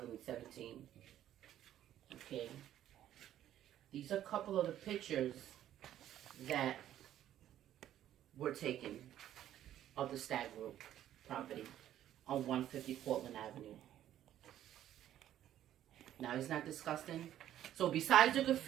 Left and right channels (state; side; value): quieter; left; 11.8 dB